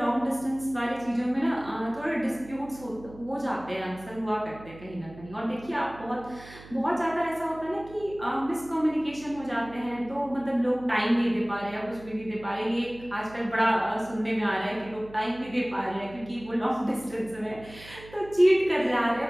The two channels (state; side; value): noise; right; hum, 18 dB below the sound